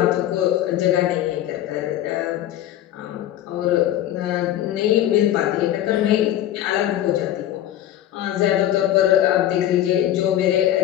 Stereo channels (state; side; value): quieter; right; 12.4 dB